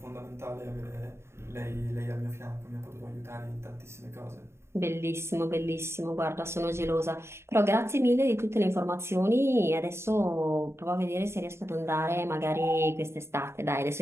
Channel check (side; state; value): left; late; 0.13 ms